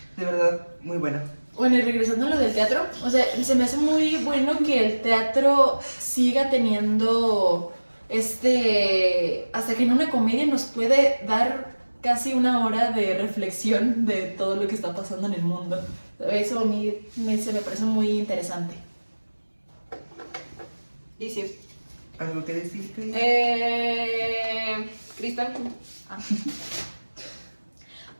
De verdad, muy buena. Bueno, y regresando a lo del teatro, o sea, se me hace muy bueno que el teatro siga teniendo hasta que en una comedia nos puede dar casi una hora de reflexión de todo lo que está pasando en el mundo. Eso a mí se me parece muy interesante. Y sí. ¿Algo que decir, Cris? Cristal.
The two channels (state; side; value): inverted; both; correlation -1.00